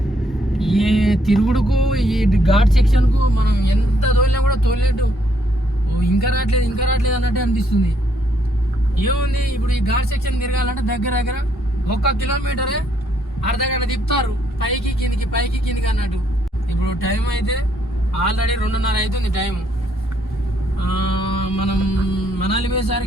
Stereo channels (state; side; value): normal; both; correlation 0.71